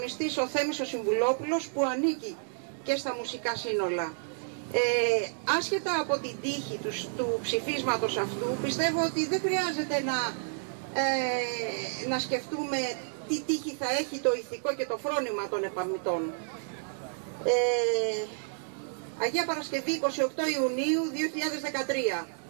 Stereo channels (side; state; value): left; silent; digital silence